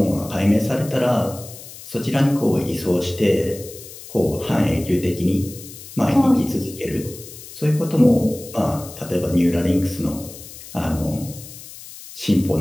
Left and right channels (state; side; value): noise; left; hiss, 15 dB below the sound